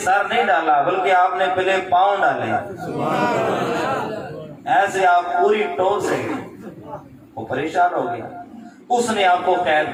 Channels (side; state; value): both; identical; correlation 1.00